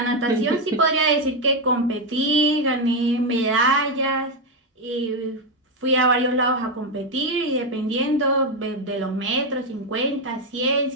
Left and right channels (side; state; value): both; normal; correlation 0.06